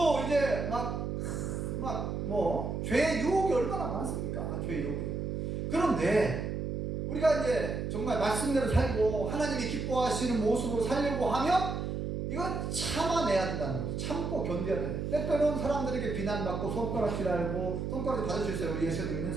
이제 죄의 유혹이 얼마나 많습니까? 죄의 유혹이. 그런데 우리가 이제 정말 말씀대로 살고 하나님이 기뻐하시는 모습으로 살려고 하면 이거 참아내야 된다는 거죠. 참고 견뎌야 돼. 때때로는 사람들에게 비난받고 손가락질하고 손가락질 받을 수 있어요. 우리 예수 믿는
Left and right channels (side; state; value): right; noise; hum, 3 dB below the sound